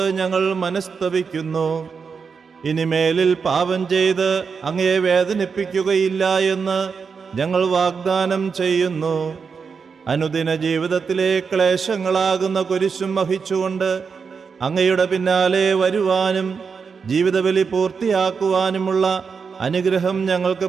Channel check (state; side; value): quieter; left; 5.7 dB